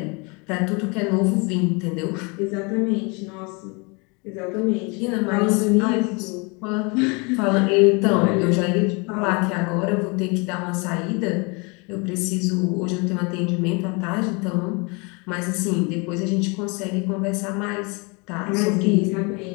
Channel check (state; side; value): quieter; right; 30.2 dB